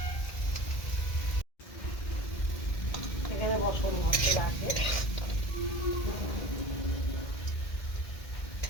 এখানে বসন মাছটা রাখে।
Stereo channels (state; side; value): late; right; 1.8 ms